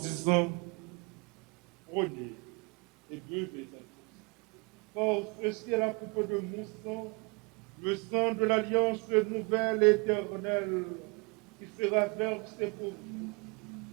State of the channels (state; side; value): quieter; left; 30.9 dB